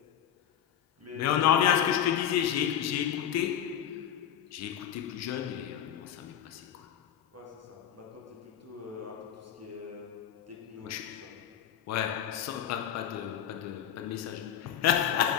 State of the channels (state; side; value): quieter; right; 9.7 dB